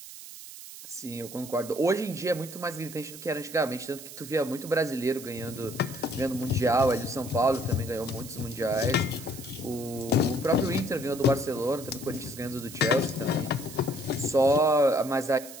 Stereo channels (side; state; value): right; noise; hiss, 14 dB below the sound